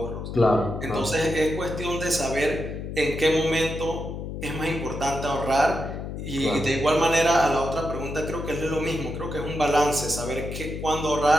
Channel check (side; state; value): left; noise; hum, 7 dB below the sound